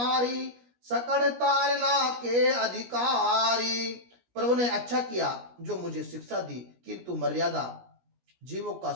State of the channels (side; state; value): left; late; 17 ms